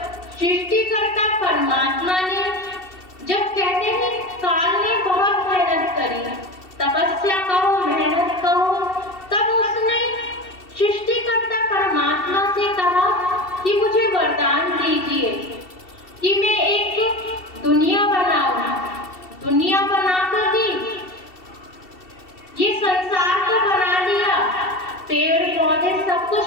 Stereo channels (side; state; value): right; late; 2.7 ms